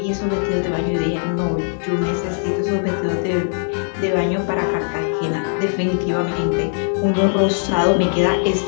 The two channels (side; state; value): right; silent; digital silence